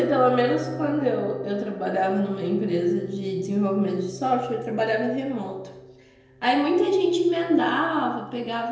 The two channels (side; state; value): both; identical; correlation 1.00